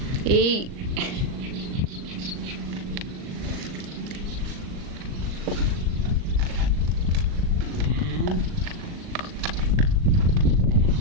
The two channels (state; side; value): late; left; 39 ms